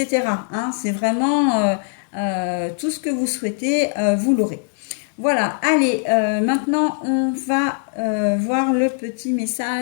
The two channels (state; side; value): silent; right; digital silence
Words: hein. C'est vraiment tout ce que vous souhaitez, vous l'aurez. Voilà, allez, maintenant on va voir le petit